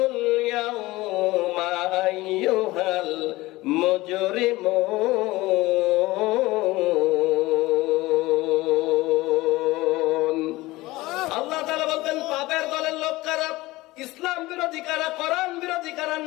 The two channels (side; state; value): right; quieter; 19.5 dB